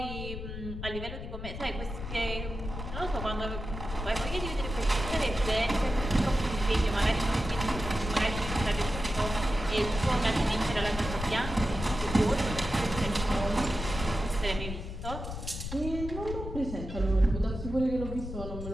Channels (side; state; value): left; noise; rumble, 7 dB below the sound